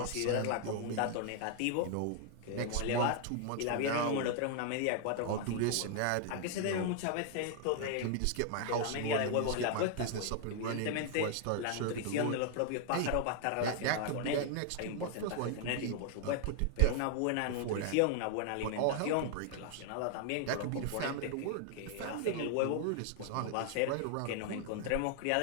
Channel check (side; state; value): both; different; correlation 0.00